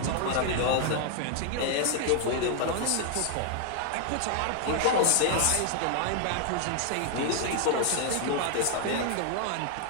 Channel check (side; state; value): both; different; correlation 0.00